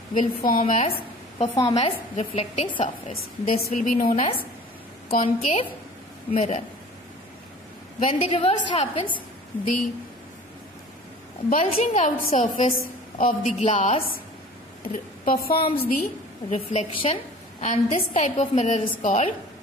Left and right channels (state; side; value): normal; both; correlation 0.44